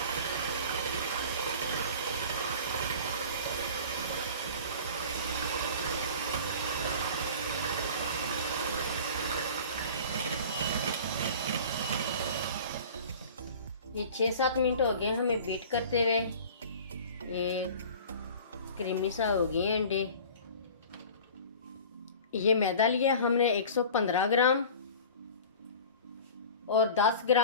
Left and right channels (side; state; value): both; inverted; correlation -0.41